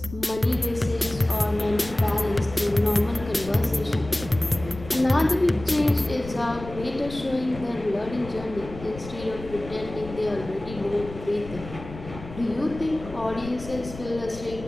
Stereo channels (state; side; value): noise; left; rumble, 13 dB below the sound